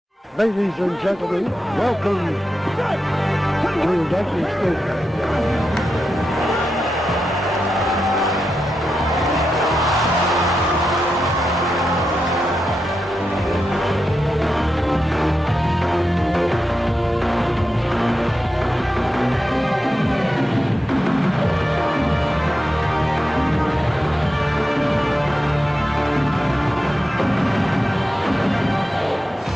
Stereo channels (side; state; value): both; normal; correlation 0.88